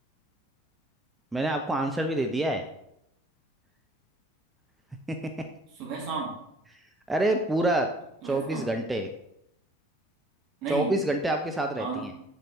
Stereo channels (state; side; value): normal; both; correlation 0.56